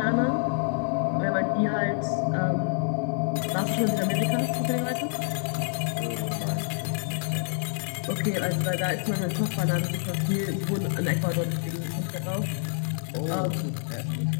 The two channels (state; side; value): silent; right; 60 dB below the other